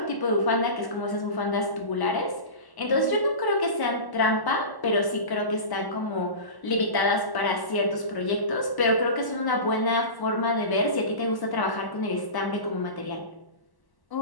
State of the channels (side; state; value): right; late; 1.1 ms